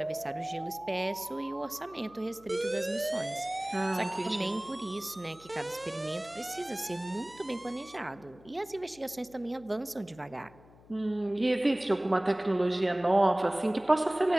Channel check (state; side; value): noise; left; hum, 24 dB below the sound